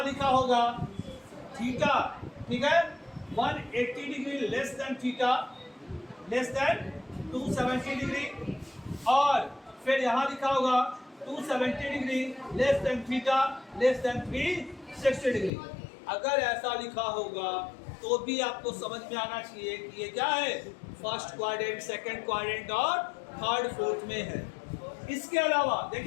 लिखा होगा थीटा, ठीक है 180 degree less than theta less than 270 degree, और फिर यहाँ लिखा होगा 270 degree less than theta less than 360 degree. अगर ऐसा लिखा होगा तो भी आपको समझ में आना चाहिए कि ये क्या है, फर्स्ट क्वाड्रेंट, सेकंड क्वाड्रेंट और थर्ड फोर्थ में है। इसके अलावा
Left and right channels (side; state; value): right; drops out; at 15.5 s